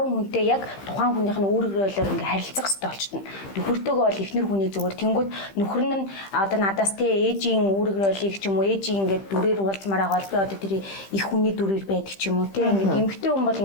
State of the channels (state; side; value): late; right; 15 ms